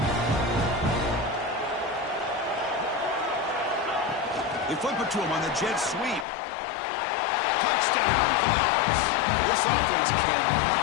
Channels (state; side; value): drops out; right; at 6.2 s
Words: They flip it to him on the jet sweep. Touchdown, Vols. This offense